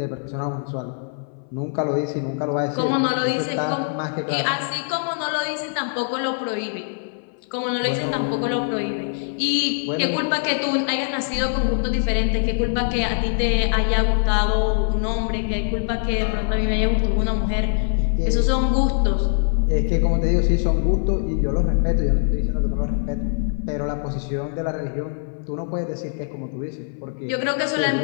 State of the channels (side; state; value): right; silent; 59 dB below the other